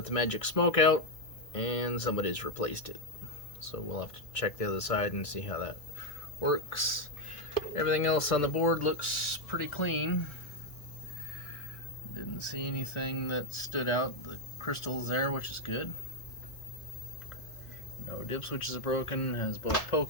the magic smoke out and somebody's replaced it. So we'll have to check the other side and see how that works. Everything else on the board looks pretty clean. Didn't see anything that stood out. The crystal's there, which is good. No dip switches are broken. Has both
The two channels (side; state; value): right; late; 1.6 ms